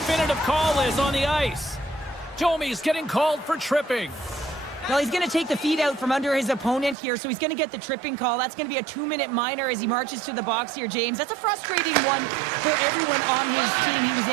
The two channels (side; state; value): left; drops out; at 7.0 s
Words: call is on the ice. Domi's getting called for tripping. Well, he's going to take the feet out from under his opponent here, so he's going to get the tripping call. That's going to be a 2-minute minor as he marches to the box here, James. That's a frustrating one for everyone on his team. He was